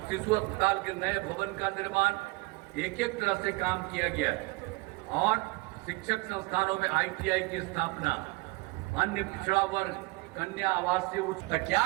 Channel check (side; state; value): left; quieter; 24.8 dB